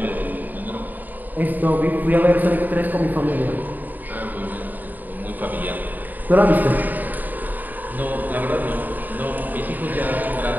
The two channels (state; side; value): late; left; 0.086 ms